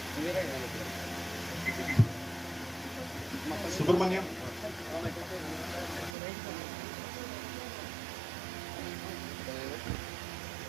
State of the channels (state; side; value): drops out; left; at 6.2 s